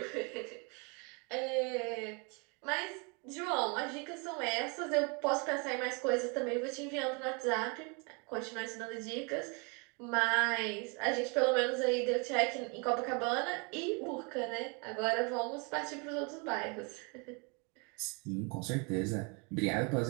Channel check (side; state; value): left; quieter; 32.3 dB